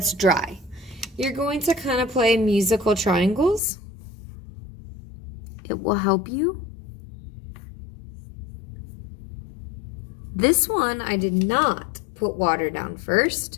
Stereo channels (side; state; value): right; drops out; at 3.6 s